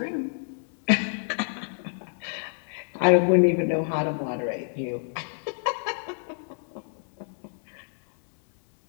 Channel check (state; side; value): silent; right; digital silence